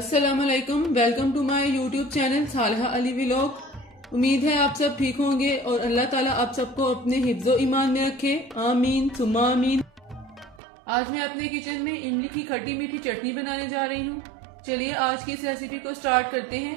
वालेकुम, welcome to my YouTube channel Salha Ali vlog. उम्मीद है आप सब ठीक होंगे और अल्लाह ताला आप सबको अपने हिफ्ज़ो ईमान में रखे, आमीन सुम्मा आमीन। आज मैं अपने किचन में इमली की खट्टी मीठी चटनी बनाने जा रही हूँ। चलिए आज की इस रेसिपी को स्टार्ट करते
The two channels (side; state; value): left; drops out; at 10.6 s